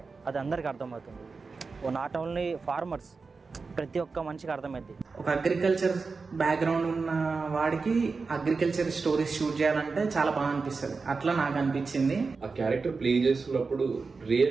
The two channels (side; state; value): left; quieter; 4.5 dB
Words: అది అందరికి అర్థమవుతుంది. నాట్ ఓన్లీ ఫార్మర్స్, ప్రతి ఒక్క మనిషికి అర్థమైంది. ఒక అగ్రికల్చర్ బ్యాక్గ్రౌండ్ ఉన్న వాడికి అగ్రికల్చర్ స్టోరీస్ షూట్ చేయాలంటే చాలా బాగా అనిపిస్తుంది. అట్లా నాకు అనిపించింది. ఆ క్యారెక్టర్ ప్లే చేస్తున్నప్పుడు